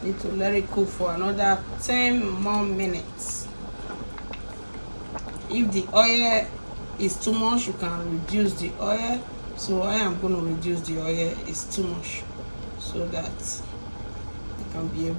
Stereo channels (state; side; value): inverted; both; correlation -1.00